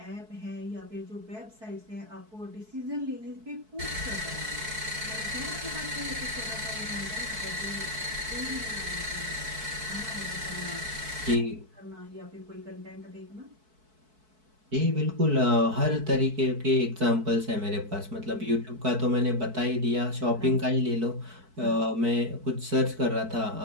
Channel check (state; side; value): late; left; 4.6 ms